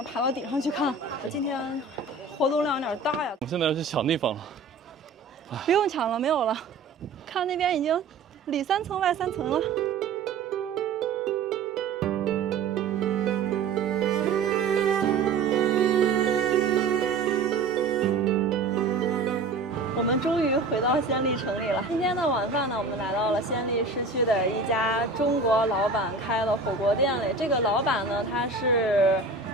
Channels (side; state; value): left; quieter; 4.1 dB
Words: 爬到顶上去看。今天活动量有点大呀。我们现在要去抢地方了。不用抢了，没有了。看那边已经里3层外3层了。我们终于回到暹粒城里了。今天的晚饭呢，我们来到了暹粒市区的一家中国老板开的火锅店里。这个老板呢，他是